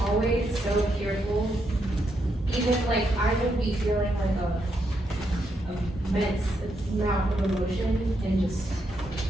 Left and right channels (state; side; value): normal; both; correlation 0.80